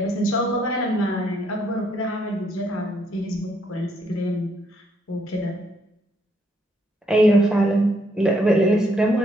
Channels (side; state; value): both; normal; correlation 0.72